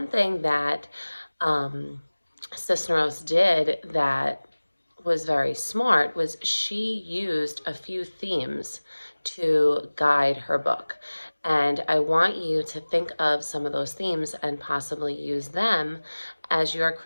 thing that Cisneros did that was very smart was she used a few themes to guide her book. And I want you to think of some of those themes and possibly use them as you're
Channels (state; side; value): inverted; both; correlation -1.00